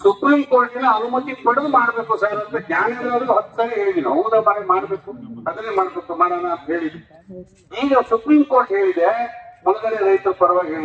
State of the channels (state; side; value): identical; both; correlation 1.00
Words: ಸುಪ್ರೀಂ ಕೋರ್ಟಿನ ಅನುಮತಿ ಪಡೆದು ಮಾಡ್ಬೇಕು ಸರ್ ಅಂತ ಜ್ಞಾನೇಂದ್ರ 10 ಸರಿ ಹೇಳಿದ್ವಿ. ಹೌದಾ ಬಾರಿ ಮಾಡ್ಬೇಕು, ಅದನ್ನೇ ಮಾಡ್ಬೇಕು, ಮಾಡೋಣ ಅಂತ ಹೇಳಿದ್ವಿ. ಈಗ ಸುಪ್ರೀಂ ಕೋರ್ಟ್ ಹೇಳಿದೆ, ಮುಳುಗಡೆ ರೈತರ ಪರವಾಗಿ